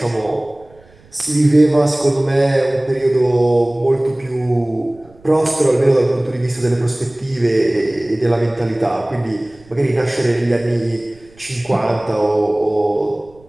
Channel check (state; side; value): noise; right; rumble, 28 dB below the sound